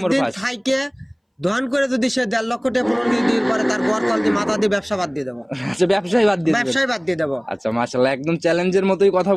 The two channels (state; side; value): identical; both; correlation 1.00